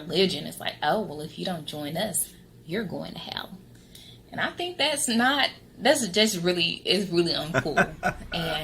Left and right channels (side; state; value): both; identical; correlation 1.00